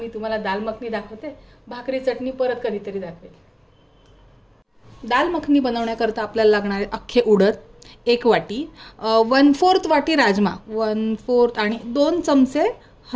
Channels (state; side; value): identical; both; correlation 1.00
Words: तुम्हाला दाल मखनी दाखवते. भाकरी चटणी परत कधीतरी दाखवेल. दाल मखनी बनवण्याकरता आपल्याला लागणार आहे अख्खे उडद 1 वाटी, 1/4 वाटी राजमा, 1/4 आणि 2 चमचे